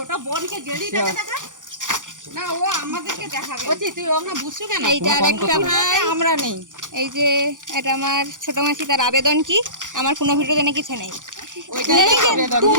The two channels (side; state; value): left; late; 0.87 ms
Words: বোনকে গেলি দেখা না, ও আমাদেরকে দেখাবে। ওজি তুই ওকে বুঝছো কেন? এইটা আরেকটা ভাই, আমরা নেই। এই যে এটা আমার ছোট মাসি, তার আবেদন কি আমার কোনো ভিডিওতে নাকি কিছু নেই।